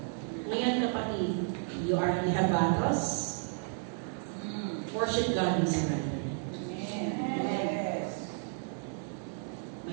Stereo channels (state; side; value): silent; left; 56 dB below the other